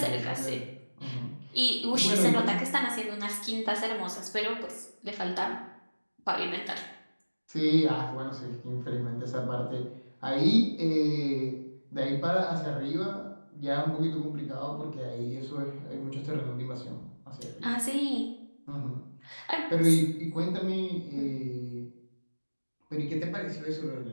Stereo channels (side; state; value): both; inverted; correlation -1.00